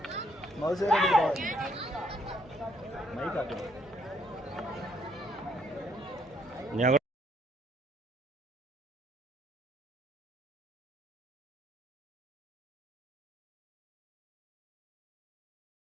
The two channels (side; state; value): both; normal; correlation 0.68